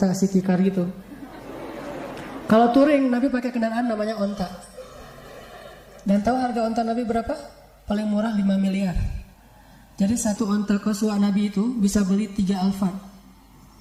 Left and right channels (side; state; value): both; identical; correlation 1.00